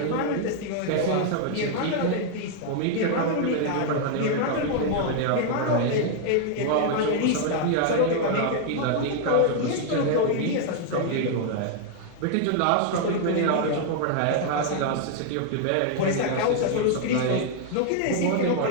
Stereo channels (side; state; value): both; different; correlation 0.00